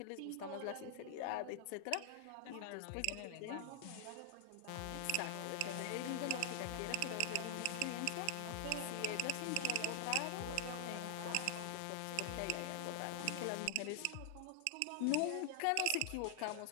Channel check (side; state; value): both; different; correlation 0.00